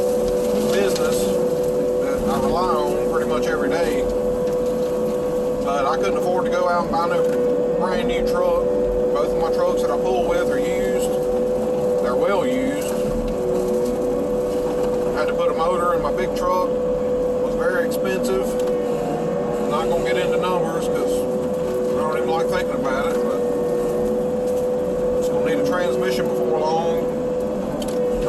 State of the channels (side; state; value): both; identical; correlation 1.00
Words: business that I rely on pretty much every day. But I couldn't afford to go out and buy no brand new truck. Both of my trucks that I pull with are used. They're well used. I had to put a motor in my big truck. It was very expensive. I'm not going to get into numbers because I don't even like thinking about it, but it's going to need a transmission before long. I'm